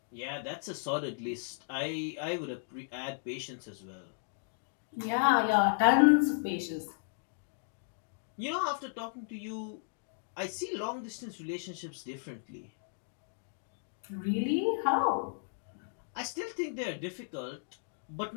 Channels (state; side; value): silent; right; digital silence